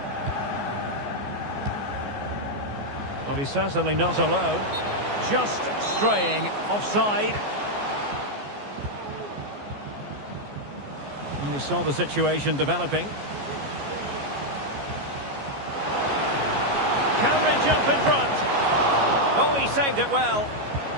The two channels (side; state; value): left; late; 14 ms